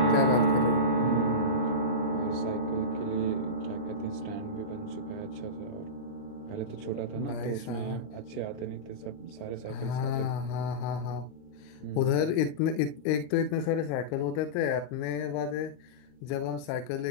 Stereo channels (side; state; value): right; late; 39 ms